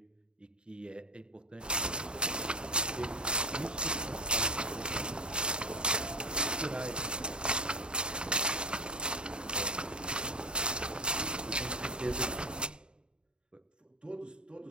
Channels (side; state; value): left; late; 0.050 ms